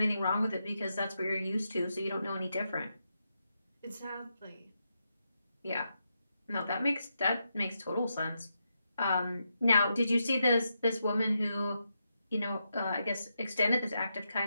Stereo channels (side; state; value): both; inverted; correlation -0.84